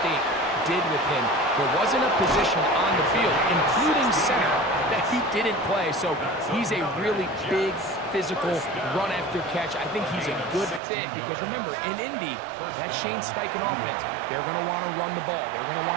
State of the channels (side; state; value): left; drops out; at 10.8 s